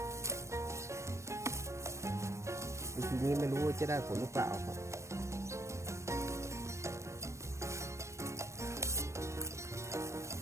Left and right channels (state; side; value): late; left; 0.14 ms